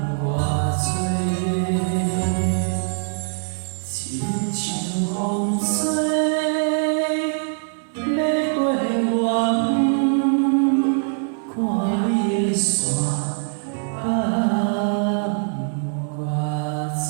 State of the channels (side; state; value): left; silent; digital silence